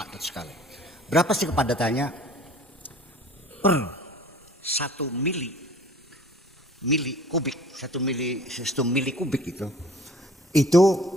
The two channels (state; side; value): normal; both; correlation 0.49